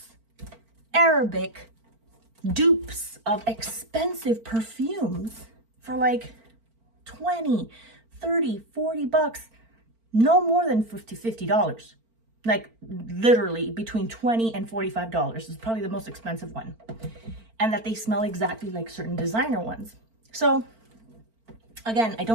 Arabic dupes of expensive perfumes for like 20, 30, 40 bucks, no more than $50. Like literally between $20 and $45 is probably the most expensive one. And that they smell exactly like certain designer ones. So again, I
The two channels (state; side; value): late; left; 4.4 ms